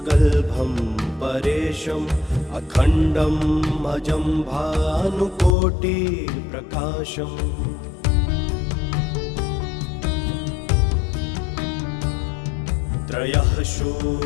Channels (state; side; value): drops out; right; at 5.6 s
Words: परेशम् अखण्डम् अजं भानुकोटिप्रकाशम् त्रयः